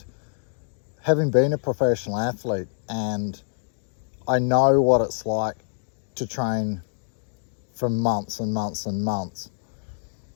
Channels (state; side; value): silent; right; digital silence